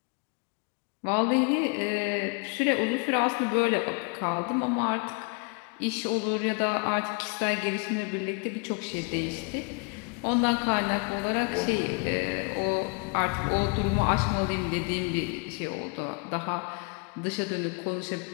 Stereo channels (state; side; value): quieter; right; 33.3 dB